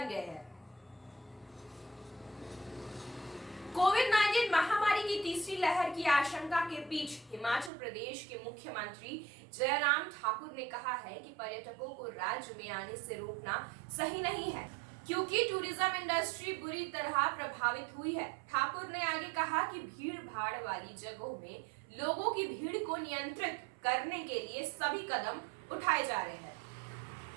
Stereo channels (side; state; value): left; drops out; at 7.7 s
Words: गए हैं। कोविड-19 महामारी की तीसरी लहर की आशंका के बीच हिमाचल प्रदेश के मुख्यमंत्री जयराम ठाकुर ने कहा है कि पर्यटकों को राज्य में आने से रोकना सही नहीं है, क्योंकि टूरिज्म इंडस्ट्री बुरी तरह प्रभावित हुई है। ठाकुर ने आगे कहा कि भीड़ भाड़ वाली जगहों में लोगों की भीड़ को नियंत्रित करने के लिए सभी कदम उठाए जा रहे हैं।